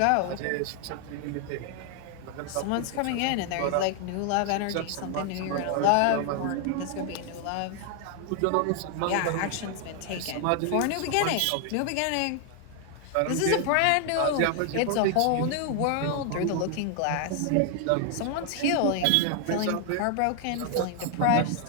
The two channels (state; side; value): different; both; correlation 0.00